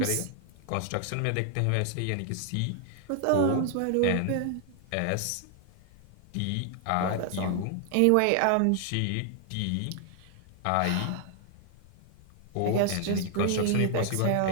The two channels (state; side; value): different; both; correlation 0.00